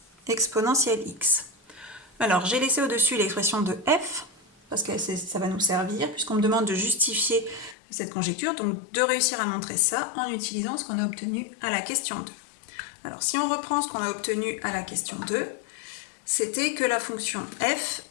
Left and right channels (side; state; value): right; drops out; at 7.8 s